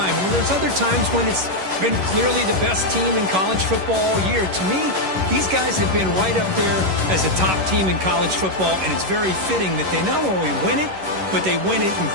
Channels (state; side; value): late; left; 11 ms